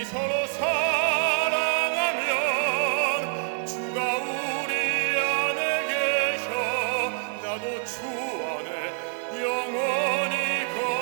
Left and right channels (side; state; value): left; silent; digital silence